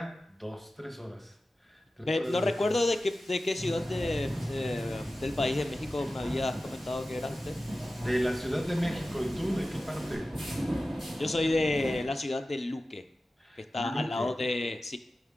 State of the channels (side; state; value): both; normal; correlation 0.95